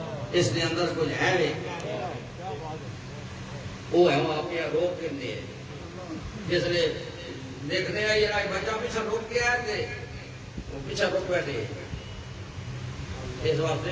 اس دے اندر کچھ ہے وے وہ ہے وہ آپ روک کے جس نے دیکھنے ہیں یہ بچہ پیچھے روک کے آئے تھے وہ پیچھے رک بیٹھے. اس واسطے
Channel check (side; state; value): both; identical; correlation 1.00